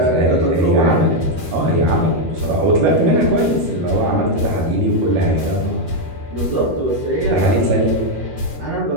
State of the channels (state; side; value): late; left; 13 ms